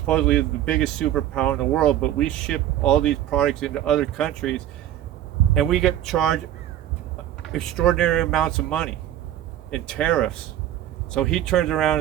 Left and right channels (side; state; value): left; quieter; 12.1 dB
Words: the biggest superpower in the world, but we ship all these products into other countries, and we get charged extraordinary amounts of money in tariffs. So he turns around